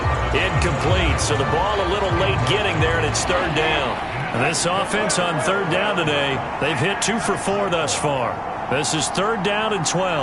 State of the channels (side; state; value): both; identical; correlation 1.00